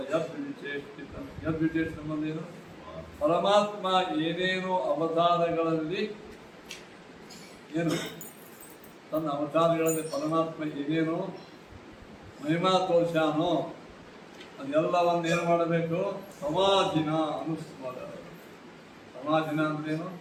ಯದ್ವಿಚೇಷ್ಟ ಏನು ಪರಮಾತ್ಮ ಏನೇನು ಅವತಾರಗಳಲ್ಲಿ ಏನು ತನ್ನ ಅವತಾರಗಳಲ್ಲಿ ಪರಮಾತ್ಮ ಏನೇನು ಮಹಿಮಾ ತೋರ್ಸ್ಯಾನೋ ಅದೆಲ್ಲವನ್ನು ಏನು ಮಾಡಬೇಕು ಸಮಾಧಿನ ಅನುಸ್ಮರ. ಸಮಾಧಿನ ಅಂದ್ರೇನು?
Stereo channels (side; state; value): both; identical; correlation 1.00